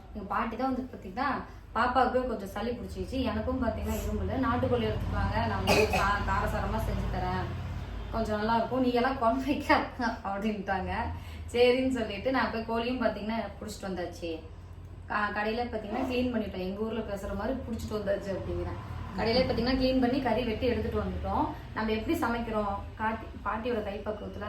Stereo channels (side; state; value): both; identical; correlation 1.00